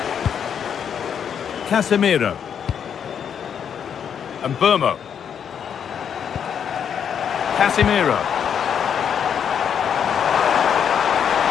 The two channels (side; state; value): right; quieter; 8.0 dB